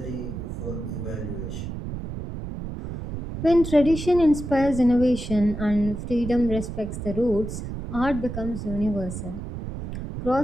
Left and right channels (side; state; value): right; noise; rumble, 7 dB below the sound